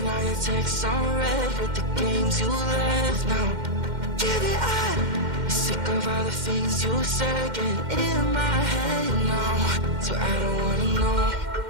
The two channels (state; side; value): late; left; 2.1 ms